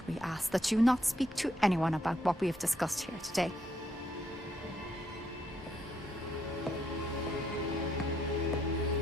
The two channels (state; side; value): normal; both; correlation 0.75